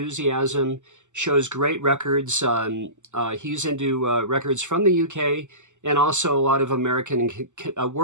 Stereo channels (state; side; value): late; left; 0.84 ms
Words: shows great records. He's into records from the UK and also a lot of American and